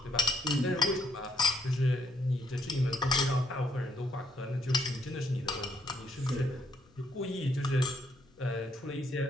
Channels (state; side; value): noise; left; rumble, 29 dB below the sound